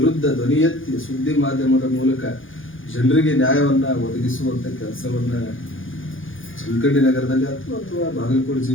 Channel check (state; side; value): late; right; 0.58 ms